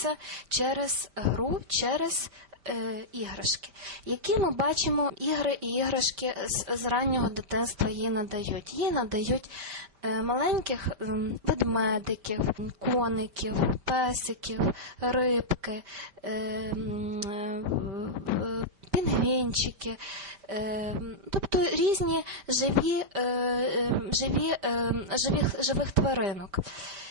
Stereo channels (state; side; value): late; left; 5.1 ms